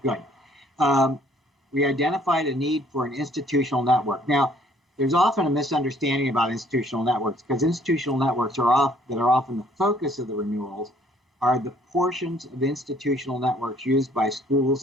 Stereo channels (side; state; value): both; normal; correlation 0.61